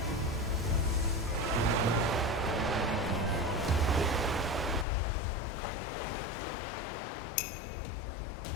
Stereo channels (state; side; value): drops out; right; at 4.9 s